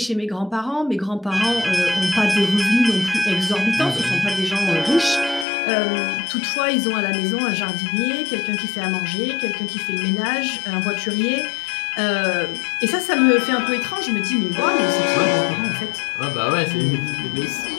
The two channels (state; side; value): drops out; right; at 5.5 s